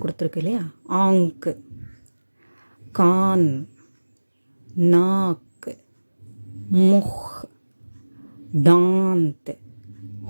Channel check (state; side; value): inverted; both; correlation -1.00